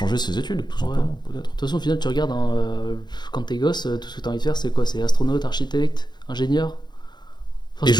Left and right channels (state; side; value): late; right; 0.21 ms